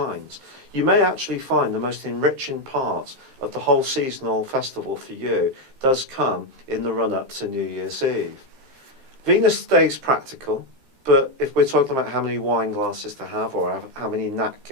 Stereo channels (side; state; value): left; late; 14 ms